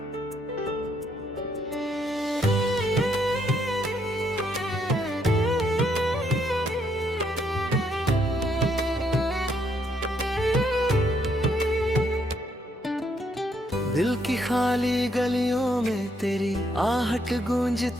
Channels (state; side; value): normal; both; correlation 0.73